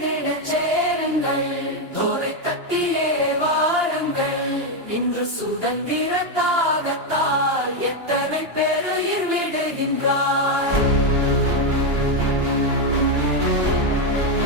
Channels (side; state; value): left; late; 2.9 ms